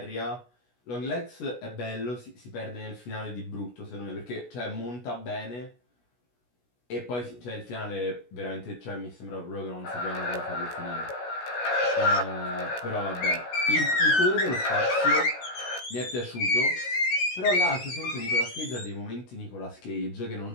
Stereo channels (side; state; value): right; late; 16 ms